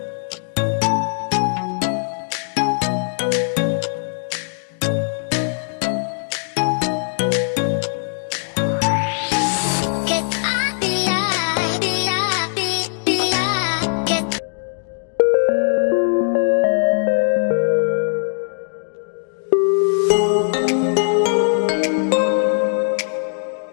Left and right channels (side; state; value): right; silent; digital silence